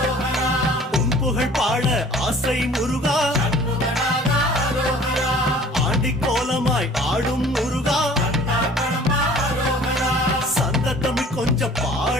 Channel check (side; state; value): both; normal; correlation 0.49